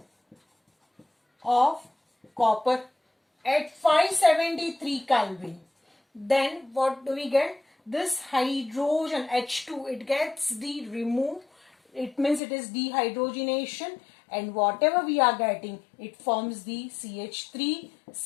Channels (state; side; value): drops out; right; at 12.4 s